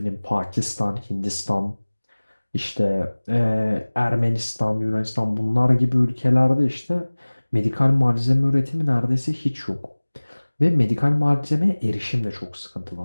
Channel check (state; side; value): inverted; both; correlation -1.00